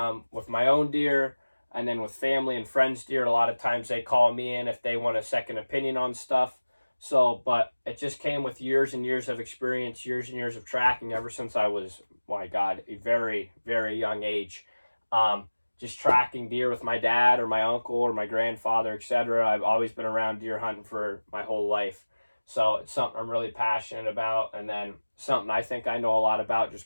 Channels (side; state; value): both; inverted; correlation -1.00